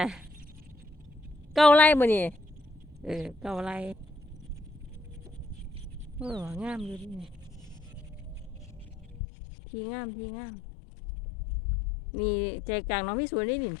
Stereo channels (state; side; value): drops out; right; at 9.2 s